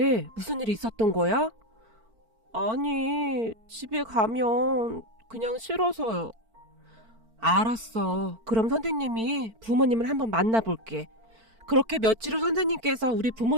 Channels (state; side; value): late; left; 4.5 ms